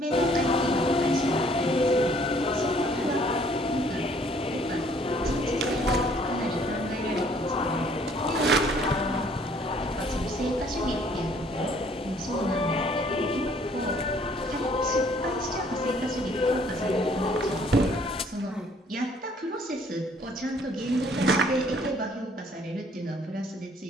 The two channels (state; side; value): normal; both; correlation 0.60